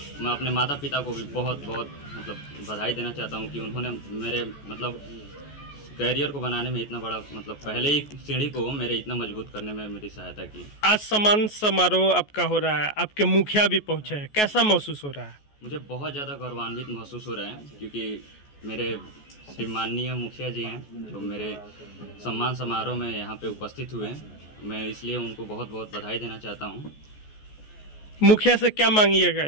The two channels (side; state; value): right; late; 14 ms